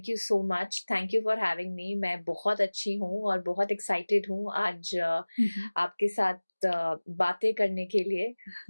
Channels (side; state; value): both; inverted; correlation -1.00